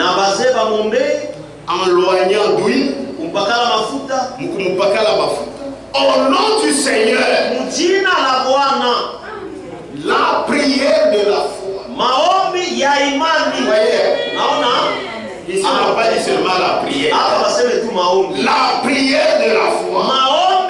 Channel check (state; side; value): identical; both; correlation 1.00